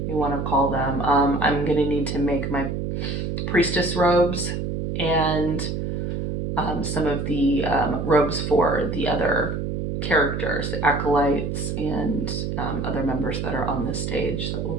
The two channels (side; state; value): right; noise; hum, 3 dB below the sound